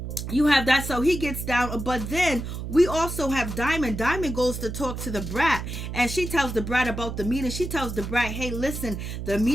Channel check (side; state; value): right; noise; hum, 6 dB below the sound